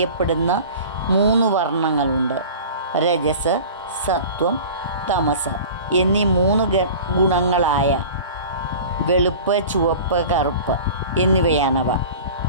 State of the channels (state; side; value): inverted; both; correlation -0.39